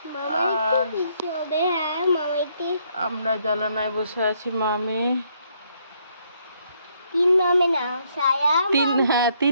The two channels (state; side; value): inverted; both; correlation -0.71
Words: আর আমরা জানালায় বসে আছি মামে। তিন মামে